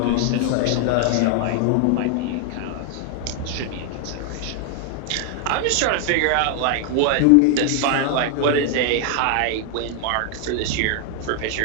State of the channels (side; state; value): both; different; correlation 0.00